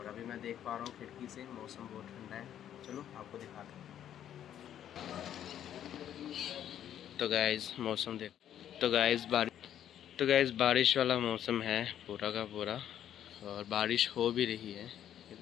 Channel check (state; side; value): quieter; right; 10.5 dB